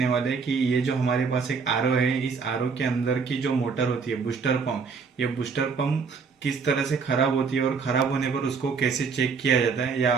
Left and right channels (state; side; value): quieter; left; 5.4 dB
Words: वाले हैं कि ये जो हमारे पास एक आरओ है, इस आरओ के अंदर की जो मोटर होती है बूस्टर पंप, ये बूस्टर पंप किस तरह से खराब होती है और खराब होने पर उसको कैसे चेक किया जाता है, या